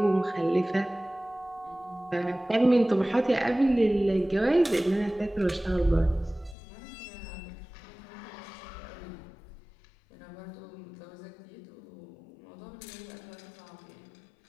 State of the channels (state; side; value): drops out; right; at 6.6 s